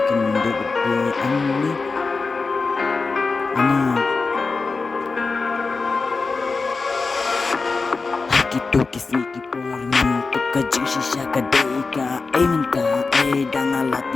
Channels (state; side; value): quieter; right; 4.2 dB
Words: mundo pi ani gitu kisi ki por mintuk kajing shisha kadeka minta